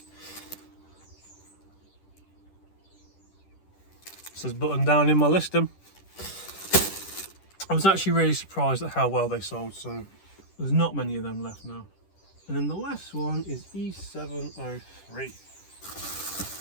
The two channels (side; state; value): right; late; 10 ms